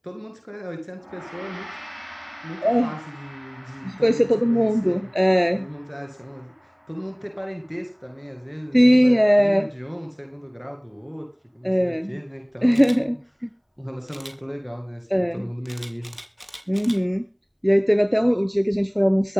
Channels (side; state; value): both; identical; correlation 1.00